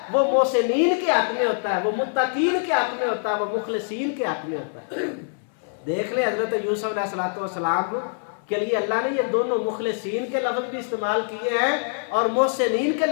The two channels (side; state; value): right; silent; 62 dB below the other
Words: وہ محسنین کے حق میں ہوتا ہے، وہ متقین کے حق میں ہوتا ہے، وہ مخلصین کے حق میں ہوتا ہے۔ دیکھ لیں حضرت یوسف علیہ السلام کے لیے اللہ نے یہ دونوں مخلصین کے لفظ بھی استعمال کیے ہیں اور محسنین کے